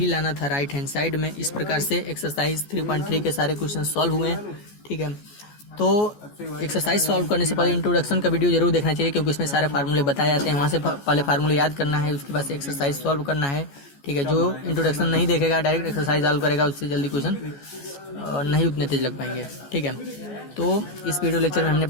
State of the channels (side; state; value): right; late; 14 ms